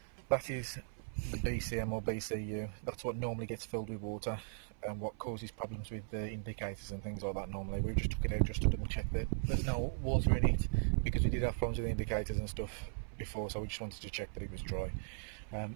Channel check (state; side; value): silent; left; 52 dB below the other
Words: That is the BCM or BCU. That's what normally gets filled with water and what causes problems with the indicators and things like that normally. We just took it out just to double check that there's no water in it, because we did have problems with the indicators and stuff before, so we just wanted to check that it was dry.